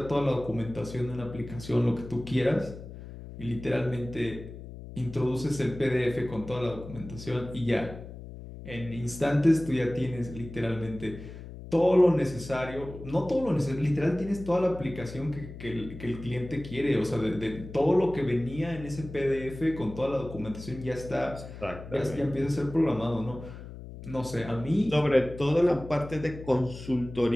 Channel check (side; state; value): left; noise; hum, 13 dB below the sound